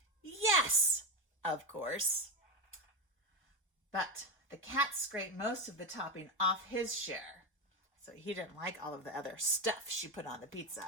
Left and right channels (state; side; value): normal; both; correlation 0.13